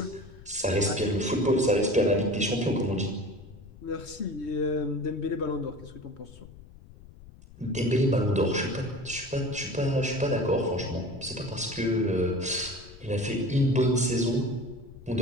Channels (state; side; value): noise; left; rumble, 19 dB below the sound